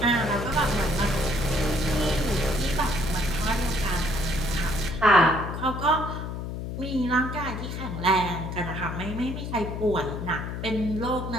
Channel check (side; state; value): left; noise; hum, 6 dB below the sound